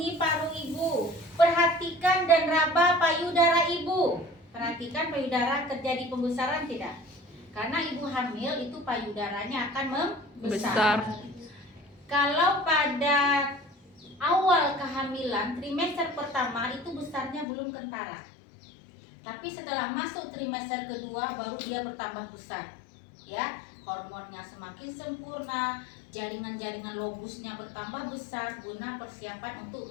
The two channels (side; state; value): right; drops out; at 17.4 s